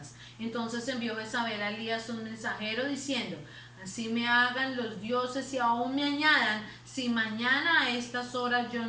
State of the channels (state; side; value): identical; both; correlation 1.00